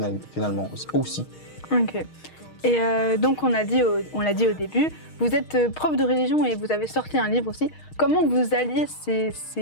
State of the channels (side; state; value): right; late; 6.4 ms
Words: finalement aussi. Ok. Et donc on l'a dit au début, vous êtes prof de religion et vous avez sorti un livre aussi. Comment vous alliez